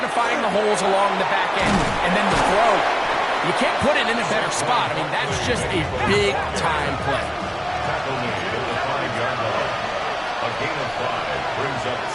the holes along the back end, and then the throw. You can't put it in a better spot. I mean, that's just a big-time play. Tackle made at the 5-yard line. A gain of 5 brings up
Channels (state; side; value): identical; both; correlation 1.00